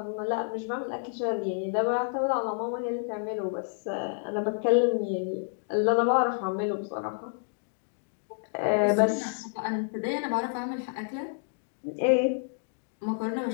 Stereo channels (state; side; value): silent; right; digital silence